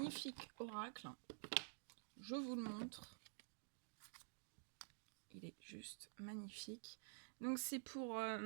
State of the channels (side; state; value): left; silent; digital silence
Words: oracle. Je vous le montre. Il est juste magnifique. Donc c'est pour,